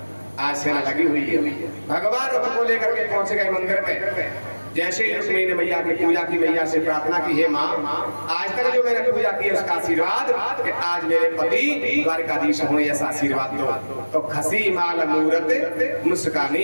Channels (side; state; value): both; inverted; correlation -1.00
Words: आज सेना लगी हुई है। भगवान रथ को लेकर के पहुंच गए मंदिर में। जैसे ही रुक्मिणी ने मैया की पूजा की, मैया से प्रार्थना की, हे माँ आज तक जो मैंने पूजा की उसका आशीर्वाद कि आज मेरे पति द्वारकाधीश हों, ऐसा आशीर्वाद दो। तो खसी माल मूरत